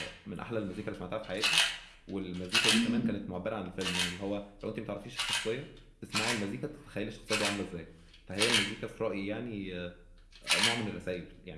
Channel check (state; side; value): identical; both; correlation 1.00